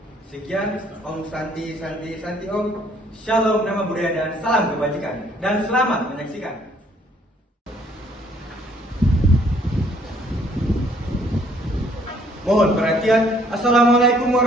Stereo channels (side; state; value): both; normal; correlation 0.63